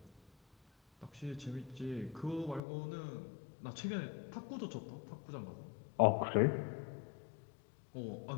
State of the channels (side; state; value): right; drops out; at 2.6 s